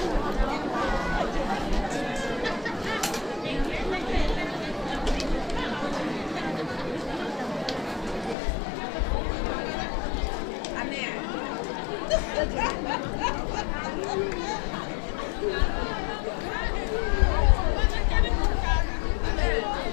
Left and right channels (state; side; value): drops out; right; at 8.3 s